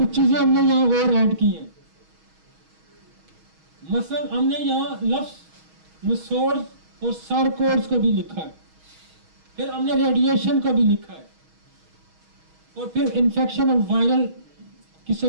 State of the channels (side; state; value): left; late; 6.3 ms